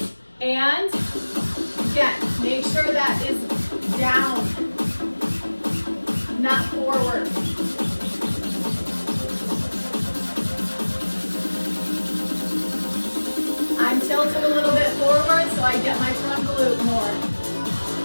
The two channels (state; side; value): inverted; both; correlation -1.00